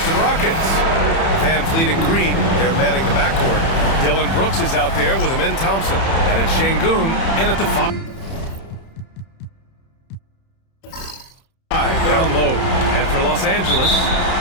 Rockets. Van Fleet and Green, they're manning the backcourt. Dillon Brooks is out there with Amen Thompson. And it's Şengün in at the 5. Down low. And for Los Angeles,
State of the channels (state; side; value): late; right; 31 ms